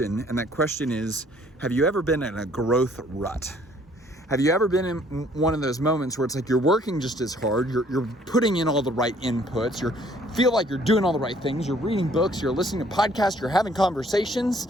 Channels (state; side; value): normal; both; correlation 0.60